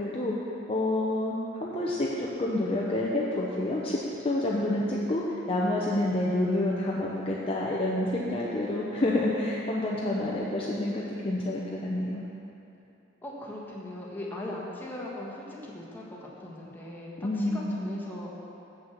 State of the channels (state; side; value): normal; both; correlation 0.62